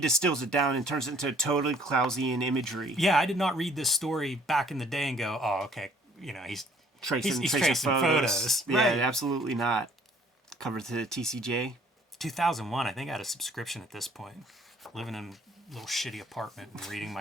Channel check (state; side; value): normal; both; correlation 0.59